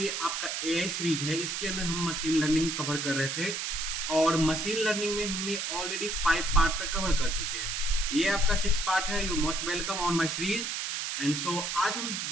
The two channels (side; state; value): right; noise; hiss, 2 dB below the sound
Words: आपका एआई सीरीज है इसके अंदर हम मशीन लर्निंग कवर कर रहे थे और मशीन लर्निंग में हमने ऑलरेडी 5 पार्ट तक कवर कर चुके हैं। ये आपका 6 पार्ट है। You most welcome on my series. And so आज हम